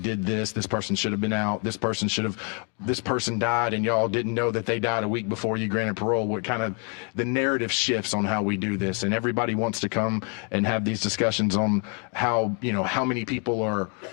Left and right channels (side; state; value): right; quieter; 37.6 dB